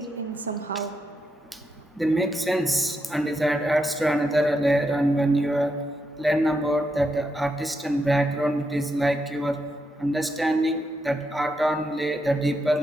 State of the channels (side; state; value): both; normal; correlation 0.82